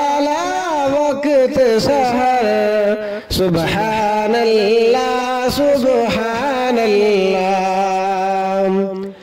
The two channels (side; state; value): both; identical; correlation 1.00